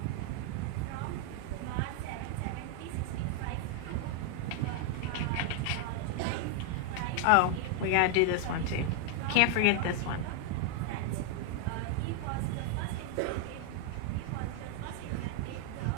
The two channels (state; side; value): different; both; correlation 0.00